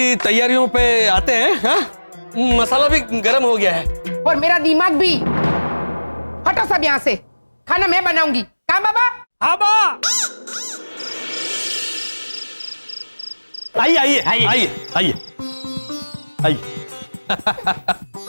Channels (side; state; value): both; inverted; correlation -1.00